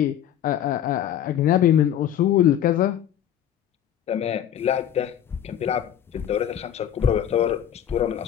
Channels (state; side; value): quieter; right; 10.4 dB